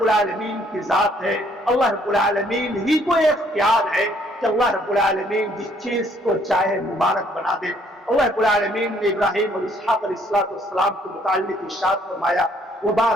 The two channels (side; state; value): both; normal; correlation 0.65